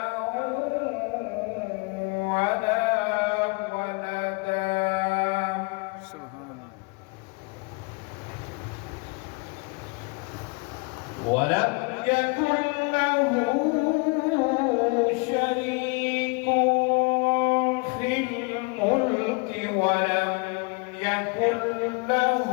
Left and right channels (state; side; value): quieter; right; 31.8 dB